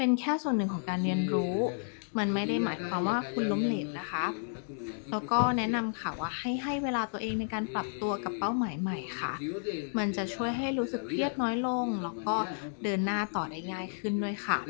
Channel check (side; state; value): right; silent; digital silence